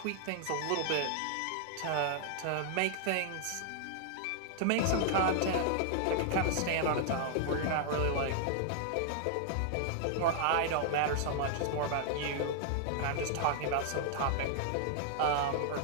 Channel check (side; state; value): both; different; correlation -0.01